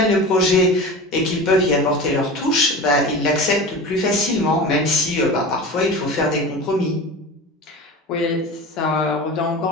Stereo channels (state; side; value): normal; both; correlation 0.32